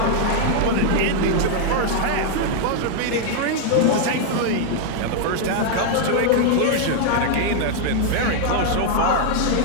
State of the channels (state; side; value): different; both; correlation 0.00